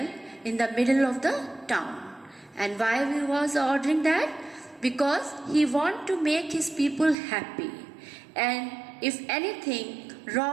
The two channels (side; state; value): left; drops out; at 7.2 s